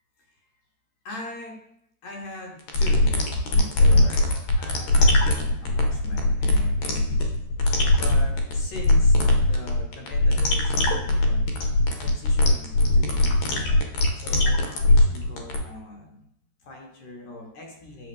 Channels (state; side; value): late; right; 13 ms